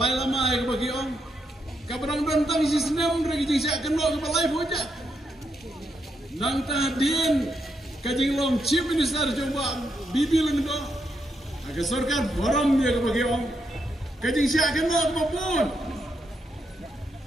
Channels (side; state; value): both; normal; correlation 0.81